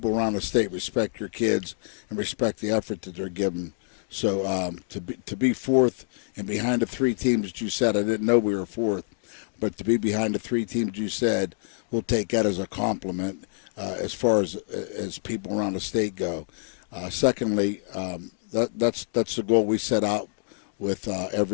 around the state respect your kids and respect the effort that they're giving So to be fourth and behind the three teams that you said, I didn't know we were fourth, but to be behind the three teams you said, we'll take that as a compliment as far as people around the state go. Secondly, that's the goal we set out with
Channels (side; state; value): right; silent; digital silence